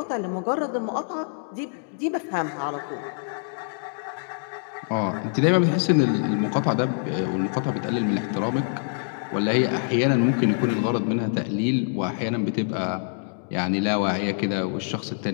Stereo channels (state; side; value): silent; right; digital silence